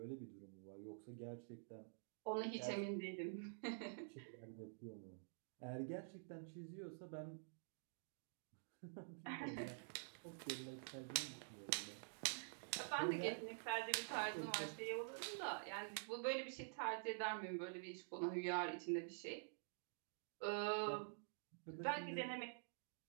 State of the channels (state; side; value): silent; left; digital silence